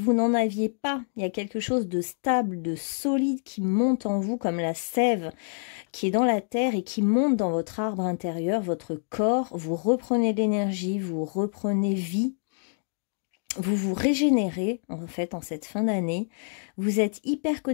aviez pas. Il y a quelque chose de stable, de solide qui monte en vous comme la sève qui est dans la terre et qui monte dans votre arbre intérieur, votre corps. Vous reprenez de l'énergie, vous reprenez vie. Vous vous régénérez, en fait, en cette fin d'année. Vous êtes hyper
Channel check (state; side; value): silent; right; digital silence